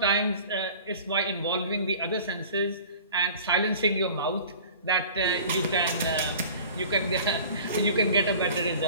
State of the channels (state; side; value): inverted; both; correlation -0.43